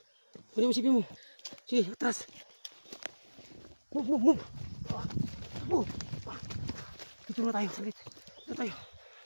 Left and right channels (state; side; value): inverted; both; correlation -1.00